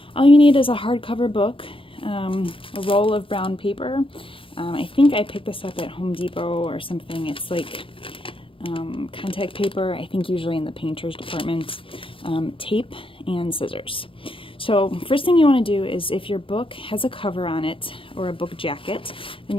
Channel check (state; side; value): late; right; 0.26 ms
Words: All you need is a hardcover book, a roll of brown paper. I think I picked this up at Home Depot or something. It's like contact paper, I think usually in the painter's department, tape, and scissors. So first thing you want to do is if your book has a cover on it or a book jacket, then